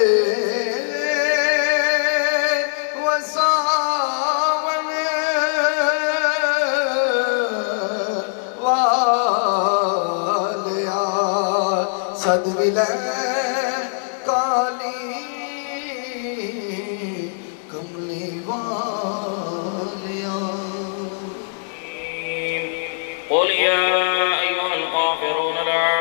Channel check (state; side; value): silent; right; 65 dB below the other